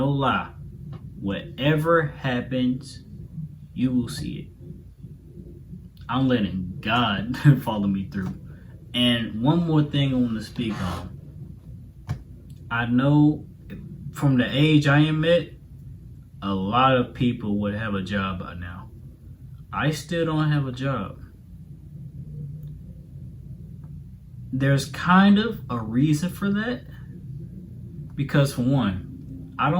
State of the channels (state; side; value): identical; both; correlation 1.00